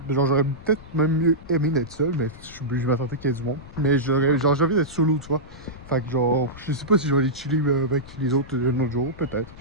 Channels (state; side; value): noise; left; rumble, 18 dB below the sound